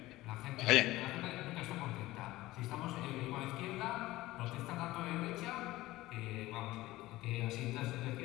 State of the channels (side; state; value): right; quieter; 17.7 dB